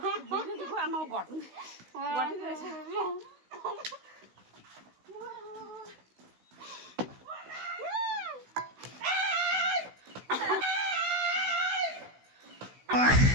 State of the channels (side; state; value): left; late; 16 ms